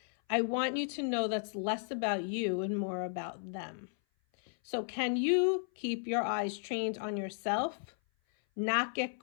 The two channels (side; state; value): right; silent; 55 dB below the other